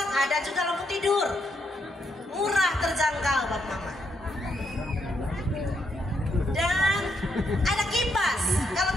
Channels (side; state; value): both; normal; correlation 0.78